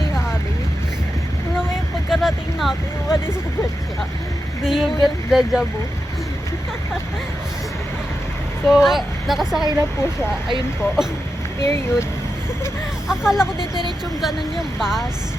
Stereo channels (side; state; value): both; normal; correlation 0.89